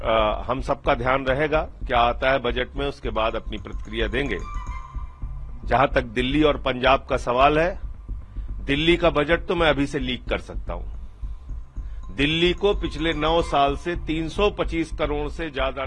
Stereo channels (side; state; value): both; identical; correlation 1.00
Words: हम सबका ध्यान रहेगा। क्या आता है बजट में, उसके बाद अपनी प्रतिक्रिया देंगे। जहां तक दिल्ली और पंजाब का सवाल है, दिल्ली का बजट तो मैं अभी से लीक कर सकता हूं। दिल्ली को पिछले 9 साल से 325 करोड़ से ज्यादा